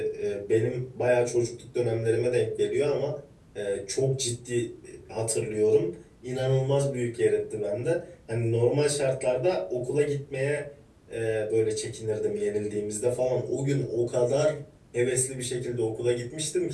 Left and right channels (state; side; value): identical; both; correlation 1.00